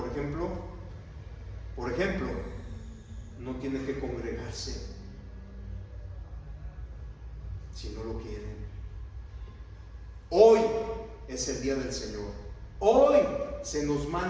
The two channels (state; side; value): identical; both; correlation 1.00